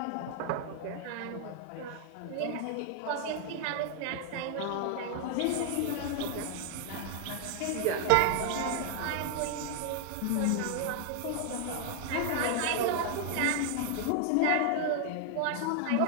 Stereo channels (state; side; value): different; both; correlation 0.00